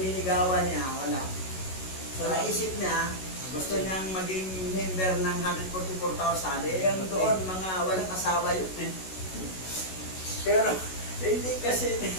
niligawan niya, wala. So naisip niya, gusto niyang maging member ng 144,000, yung doon, mga walang asawa yun eh. Pero hindi kasi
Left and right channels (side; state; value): right; late; 16 ms